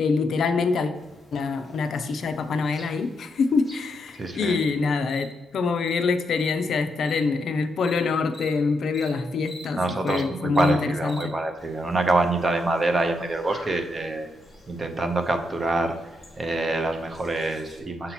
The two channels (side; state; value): both; normal; correlation 0.81